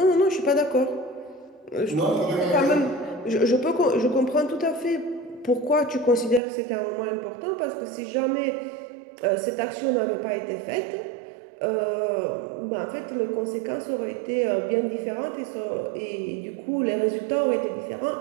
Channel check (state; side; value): drops out; left; at 6.4 s